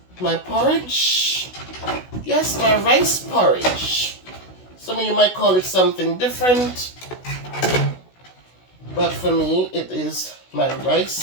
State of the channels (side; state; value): right; late; 16 ms